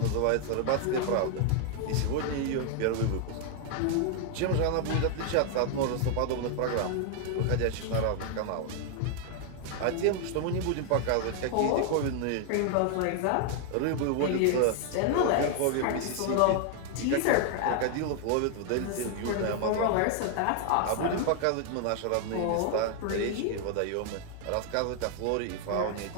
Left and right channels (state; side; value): different; both; correlation 0.00